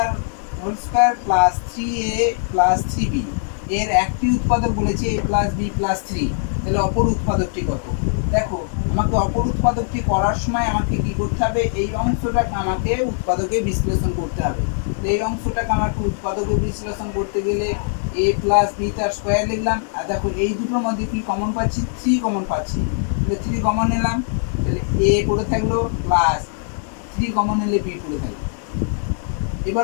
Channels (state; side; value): silent; right; 64 dB below the other